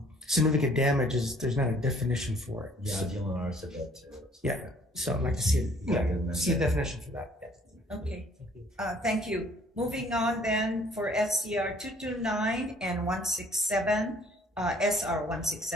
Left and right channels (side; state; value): both; normal; correlation 0.58